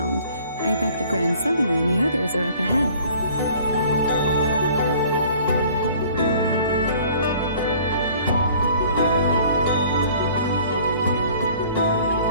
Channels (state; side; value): inverted; both; correlation -0.52